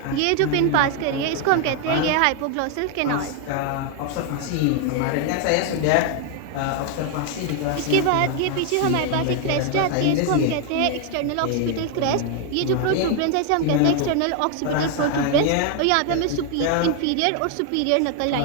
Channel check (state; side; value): different; both; correlation 0.01